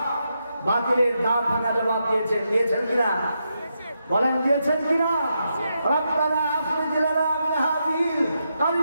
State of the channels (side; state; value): both; inverted; correlation -0.84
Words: বাতিলের দাঁত ভাঙা জবাব দিয়েছেন কিনা? বলেন দিয়েছেন কিনা? রব্বানা আখরিজ লানা মিন হাযিহিল